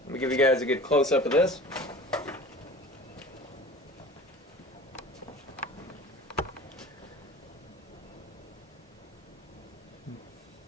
let me give you guys a good close-up of this.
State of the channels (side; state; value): both; normal; correlation 0.41